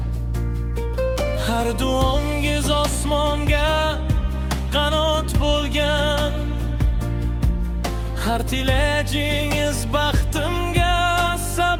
Har duongiz osmonga qanot bo'lgan. Har tilajingiz baxtimga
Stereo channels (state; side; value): identical; both; correlation 1.00